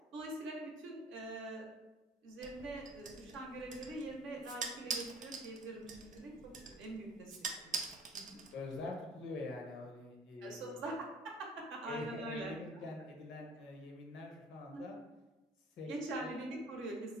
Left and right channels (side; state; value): both; normal; correlation 0.49